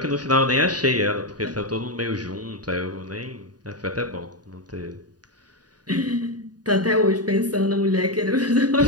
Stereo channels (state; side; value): late; left; 0.69 ms